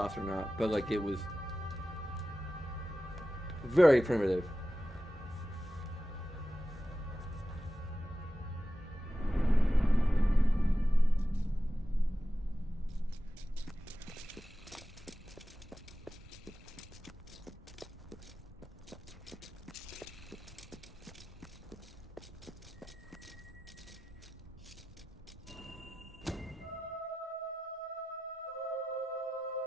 or not, but like it was very primitive.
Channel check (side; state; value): both; normal; correlation 0.94